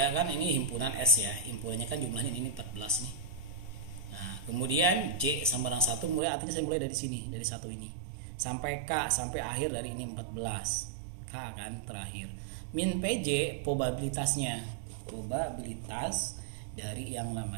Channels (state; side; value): drops out; left; at 6.2 s